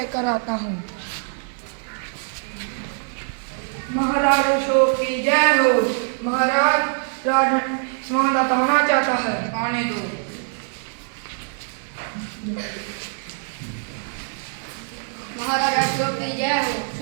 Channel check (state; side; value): silent; left; 61 dB below the other